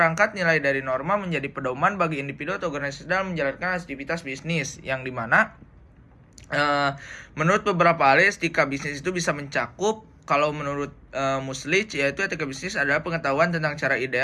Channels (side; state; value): both; identical; correlation 1.00